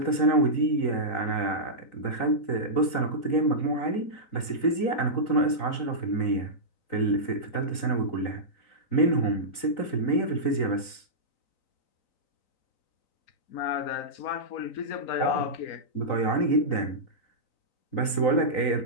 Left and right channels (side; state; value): right; late; 3.9 ms